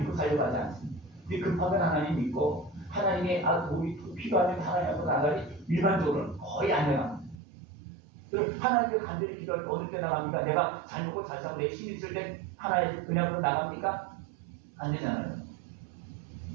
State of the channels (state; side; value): drops out; left; at 7.4 s